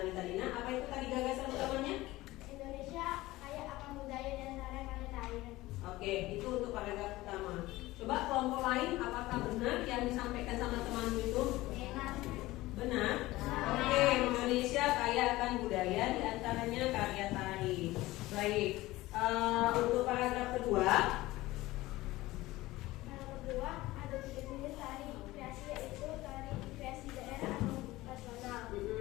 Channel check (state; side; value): quieter; right; 18.4 dB